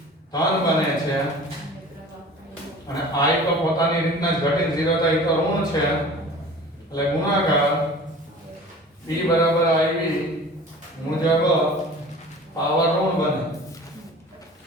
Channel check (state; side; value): normal; both; correlation 0.42